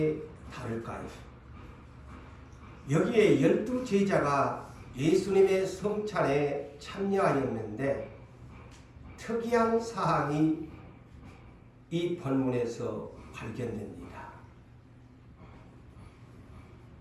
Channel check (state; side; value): identical; both; correlation 1.00